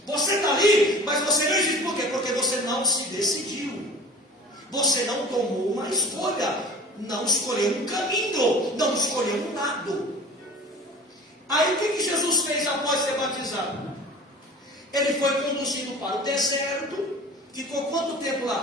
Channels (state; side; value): normal; both; correlation 0.40